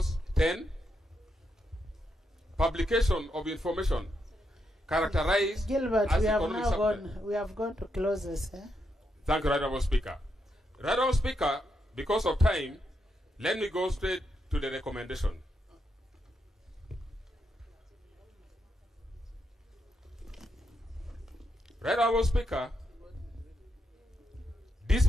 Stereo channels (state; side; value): normal; both; correlation 0.82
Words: 10. Publication of information characterized Gilbert, as we have economic now substance. gone. We have gone to clauses. Thank you, Right Honourable Speaker. Right Honourable Speaker, because of time, let me go straight to the recommendation. Right Honourable Speaker, this